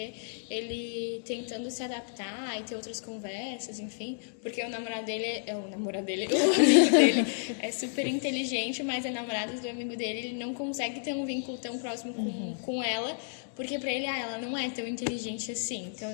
ele tentando se adaptar e ter outras conversas, enfim. Porque o amigo dele é super inteligente, mas a namorada do amigo dele, ele não consegue ter um vínculo tão próximo com ela, porque pra ele, ela não é tão inteligente assim. Então eu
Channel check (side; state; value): right; silent; digital silence